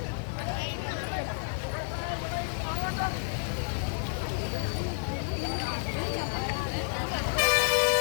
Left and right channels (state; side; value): silent; right; 58 dB below the other